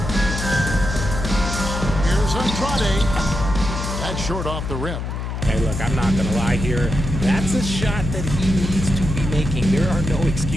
Here's Andrade. That's short off the rim. Hey, look, I'm not going to lie here. That's a shot that he needs to be making. There are no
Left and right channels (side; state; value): left; noise; hum, 5 dB below the sound